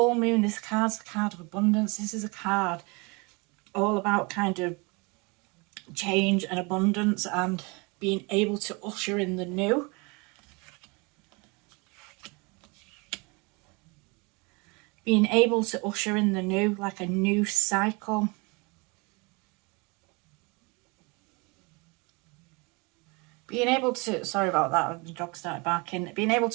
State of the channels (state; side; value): quieter; left; 28.6 dB